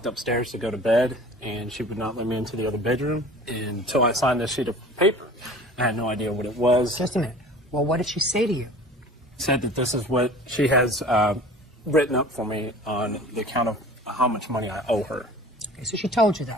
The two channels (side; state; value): both; normal; correlation 0.43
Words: upstairs to go to bed, and she would not let me into the other bedroom until I signed this sheet of paper. I had no idea what it was. Just a minute. Well, what did she say to you? Said that this is what she has written up for me on the account of how much money I owe her. Okay, so she told you